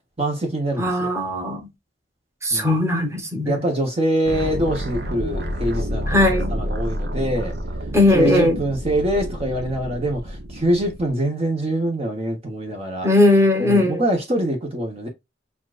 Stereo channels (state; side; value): normal; both; correlation 0.61